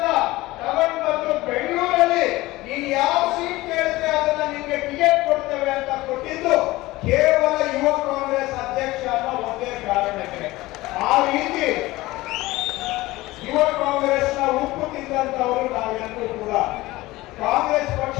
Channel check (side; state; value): right; quieter; 19.0 dB